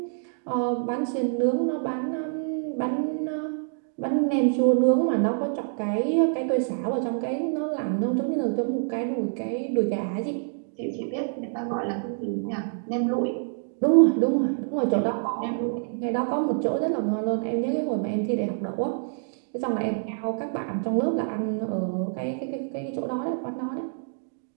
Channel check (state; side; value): silent; left; digital silence